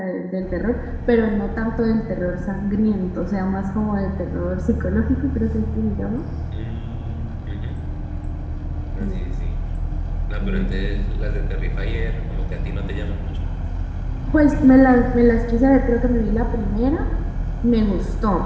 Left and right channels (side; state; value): both; identical; correlation 1.00